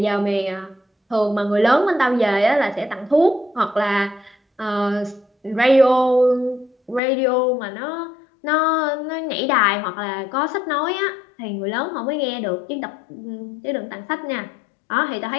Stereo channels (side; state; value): right; drops out; at 7.0 s